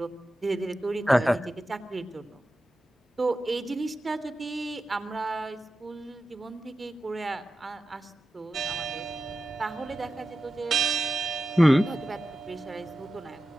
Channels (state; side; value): normal; both; correlation 0.93